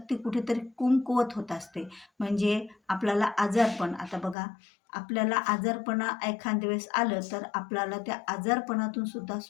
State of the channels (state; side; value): drops out; right; at 4.4 s